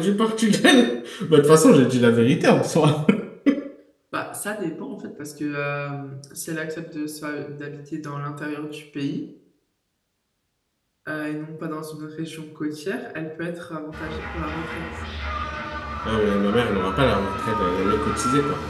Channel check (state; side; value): identical; both; correlation 1.00